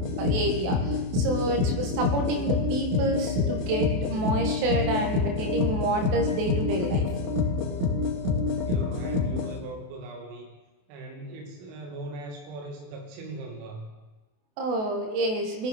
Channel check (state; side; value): late; left; 28 ms